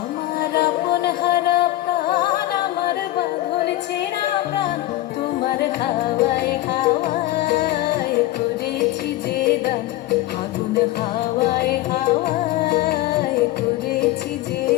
আপন হারা প্রাণ, আমার বাঁধন ছেঁড়া প্রাণ। তোমার হাওয়ায় হাওয়ায় করেছি যে দান, আগুন হাওয়ায় হাওয়ায় করেছি যে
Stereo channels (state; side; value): quieter; right; 16.1 dB